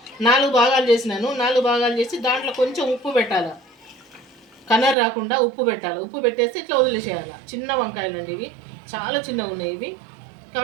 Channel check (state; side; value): drops out; left; at 5.0 s